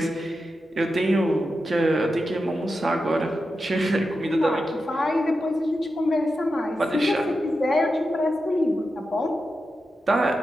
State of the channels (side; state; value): both; normal; correlation 0.90